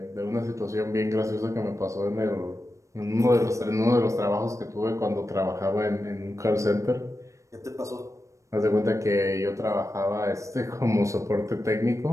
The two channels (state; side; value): late; left; 0.15 ms